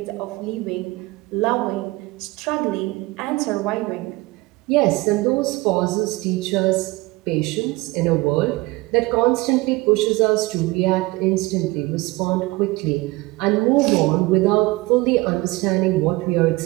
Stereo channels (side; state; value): left; quieter; 21.9 dB